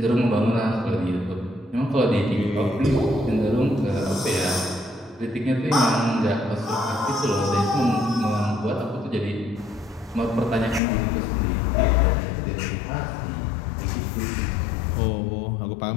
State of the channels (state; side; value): drops out; right; at 10.8 s